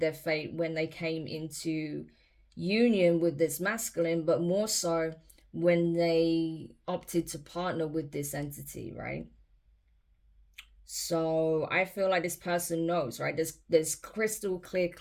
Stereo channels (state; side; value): identical; both; correlation 1.00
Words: fate when they came into union with this masculine, but more so when they opted to partner with this entity, right? So I feel like this person knows, right? There's crystal clear